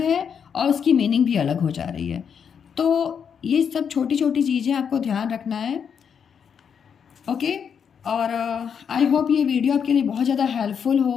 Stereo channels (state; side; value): quieter; right; 7.2 dB